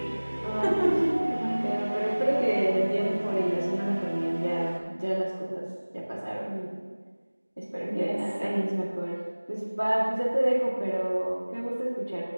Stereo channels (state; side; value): inverted; both; correlation -1.00